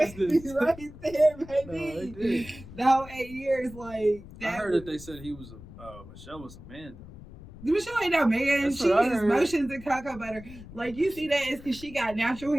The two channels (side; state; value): left; noise; rumble, 17 dB below the sound